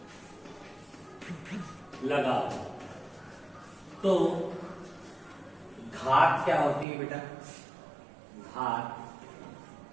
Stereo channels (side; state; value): left; drops out; at 6.9 s